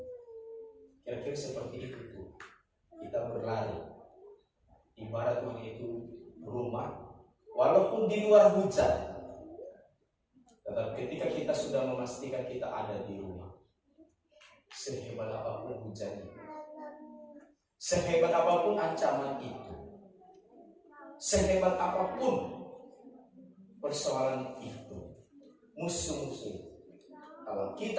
Kira-kira seperti itu tuh. Kita berlari. Ibarat Tuhan itu rumah, walaupun di luar hujan. Tetapi ketika kita sudah memastikan kita ada di rumah, sehebat apapun hujan itu, sehebat apapun ancaman itu, sehebat apapun persoalan itu, musuh-musuh, kalau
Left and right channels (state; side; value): identical; both; correlation 1.00